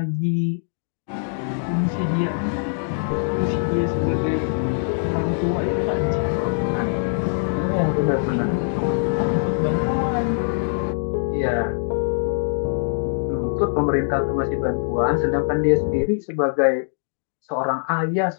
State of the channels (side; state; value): right; silent; digital silence